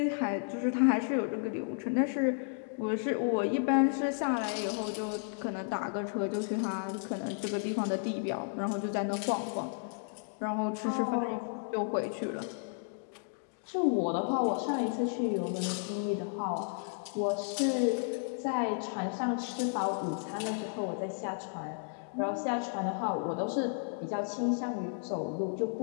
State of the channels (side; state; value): right; silent; digital silence